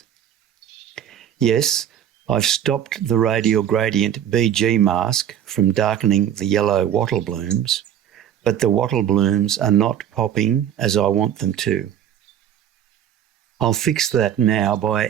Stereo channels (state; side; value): quieter; left; 10.0 dB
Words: Yes, I've stopped the radial gradient BG mask from darkening the yellow wattle blooms, but the wattle blooms are not popping as I want them to. I'll fix that now by